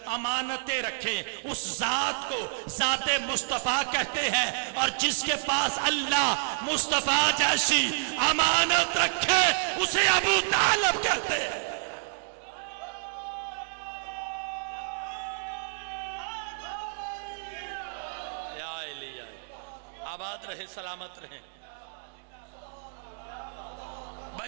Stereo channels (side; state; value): left; silent; digital silence